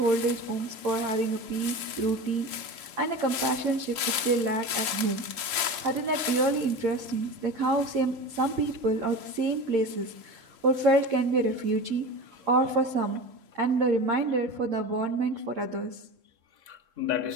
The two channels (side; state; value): left; late; 3.7 ms